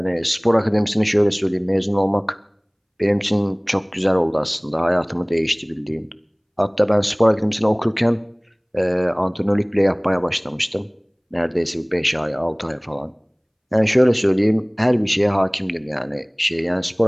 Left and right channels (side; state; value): both; identical; correlation 1.00